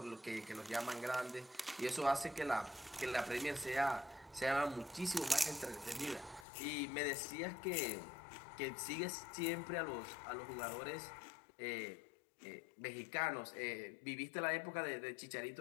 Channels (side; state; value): right; drops out; at 6.5 s